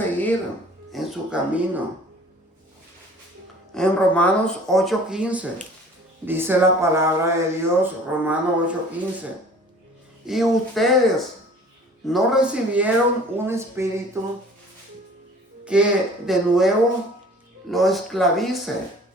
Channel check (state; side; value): normal; both; correlation 0.48